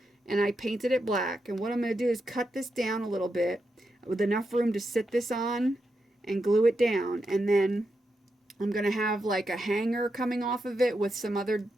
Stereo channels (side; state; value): both; normal; correlation 0.85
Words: and I painted it black. And what I'm going to do is cut this down a little bit with enough room to sit this on and glue it down. And then I'm going to have like a hanger coming off of it with some other